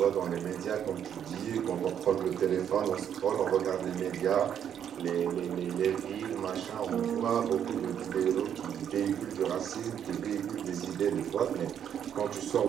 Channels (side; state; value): left; quieter; 9.0 dB